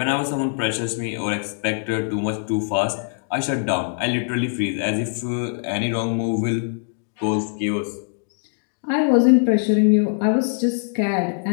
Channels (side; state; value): right; silent; digital silence